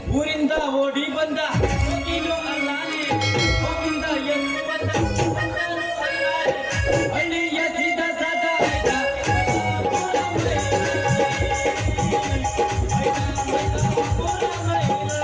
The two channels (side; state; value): both; identical; correlation 1.00